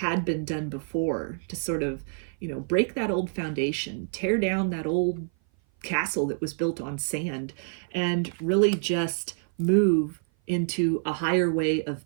been done before, to sort of, break that old foundation, tear down that old castle that was built on sand, and really just move into a higher way of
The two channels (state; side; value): silent; left; 56 dB below the other